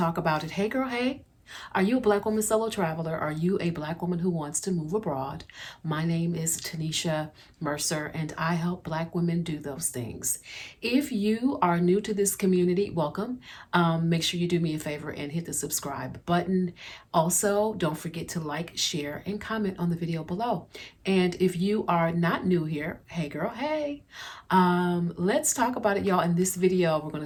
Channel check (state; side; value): identical; both; correlation 1.00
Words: about it. Hey girl, hey. Are you a Black woman solo traveler? Are you a Black woman who wants to move abroad? My name is Tanisha Mercer, and I help Black women do those things. If you are new to this community, welcome. Make sure you do me a favor and hit the subscribe button. Also, don't forget to like, share, and comment on the video below. And if you are not new here, hey girl, hey. Let's talk about it, y'all. In this video, we're